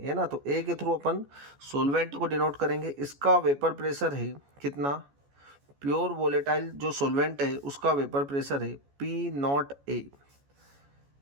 है ना। तो ए के थ्रू अपन सोलवेंट को डिनोट करेंगे। इसका वेपर प्रेशर है कितना, प्योर वोलेटाइल जो सोलवेंट है उसका वेपर प्रेशर है पी नॉट ए।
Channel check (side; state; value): left; late; 14 ms